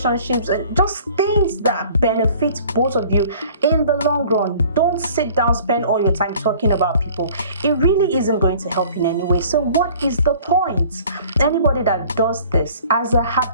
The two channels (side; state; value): both; inverted; correlation -0.50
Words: and just things that benefit both of you in the long run. Don't sit down, spend all your time talking about people. It really isn't going to help in any way. So what is the point? Anybody that does this as a